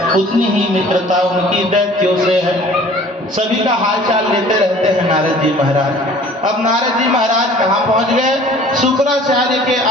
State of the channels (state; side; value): normal; both; correlation 0.49